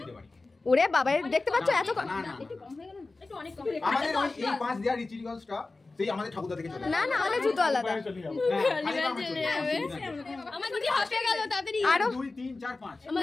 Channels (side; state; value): right; quieter; 3.5 dB